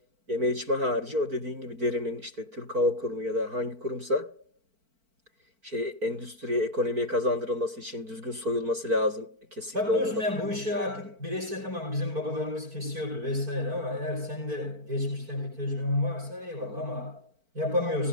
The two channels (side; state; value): left; late; 4.5 ms